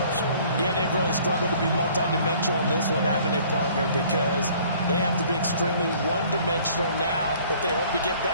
Yeah, they've really struggled to be multidimensional in this one, haven't they, partner? Because they have to be extremely one-dimensional now if they hope to get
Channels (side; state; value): both; inverted; correlation -0.55